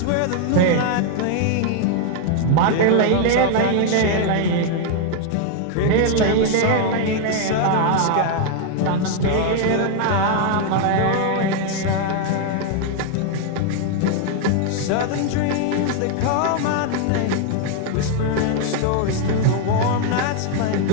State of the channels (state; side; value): different; both; correlation 0.00